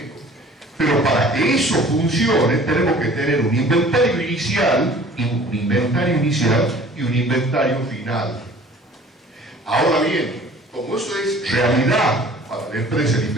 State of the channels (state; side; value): normal; both; correlation 0.49